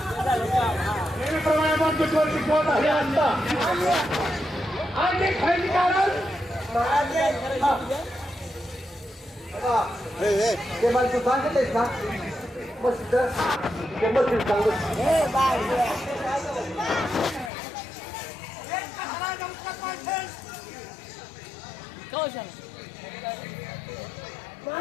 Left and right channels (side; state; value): right; drops out; at 17.5 s